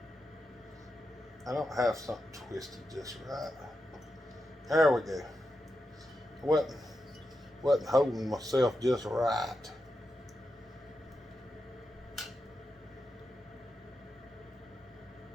I don't have something twisted just right. There we go. Wasn't holding myself just right.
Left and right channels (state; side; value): normal; both; correlation 0.88